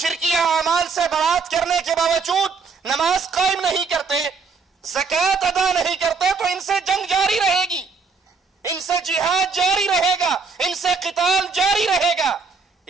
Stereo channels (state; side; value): quieter; left; 4.8 dB